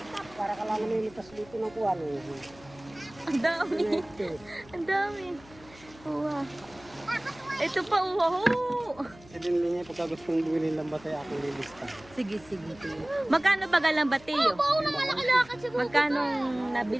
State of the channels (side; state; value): left; noise; hum, 23 dB below the sound